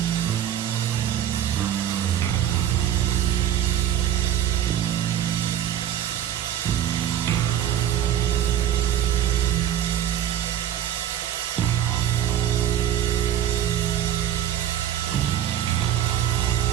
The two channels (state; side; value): quieter; left; 10.5 dB